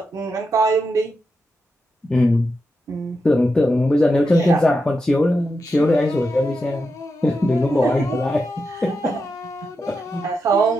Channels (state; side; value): normal; both; correlation 0.87